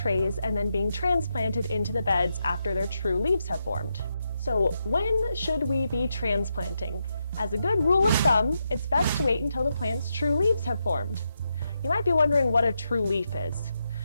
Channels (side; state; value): both; inverted; correlation -0.84